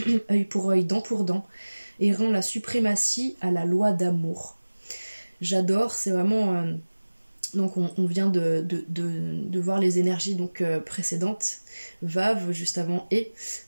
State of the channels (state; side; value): inverted; both; correlation -1.00